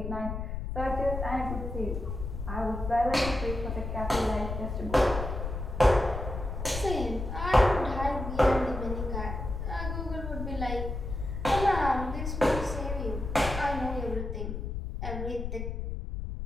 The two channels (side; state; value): left; noise; rumble, 5 dB below the sound